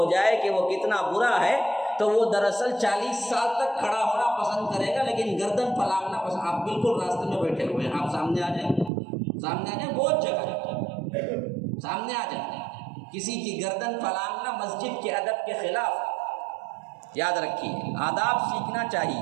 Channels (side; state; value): left; drops out; at 8.9 s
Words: جائے کہ وہ کتنا برا ہے تو وہ دراصل 40 سال تک کھڑا ہونا پسند کرے گا، لیکن گردن پھلانگنا پسند۔ آپ بالکل راستے میں بیٹھے ہوئے ہیں، آپ سامنے آ جائیں، سامنے آ جائیں، بہت جگہ ہے، سامنے آ جائیں۔ کسی کی گردن پھلانگنا مسجد کے ادب کے خلاف ہے، یاد رکھیے، آداب سیکھنا